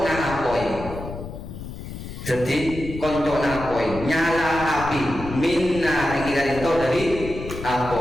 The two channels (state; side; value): noise; left; rumble, 10 dB below the sound